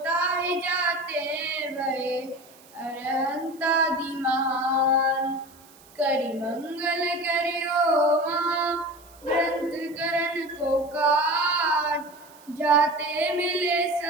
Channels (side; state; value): right; noise; hiss, 25 dB below the sound